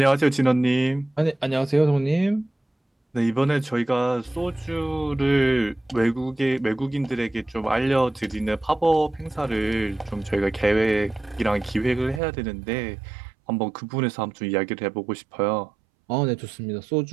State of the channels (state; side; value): drops out; left; at 12.2 s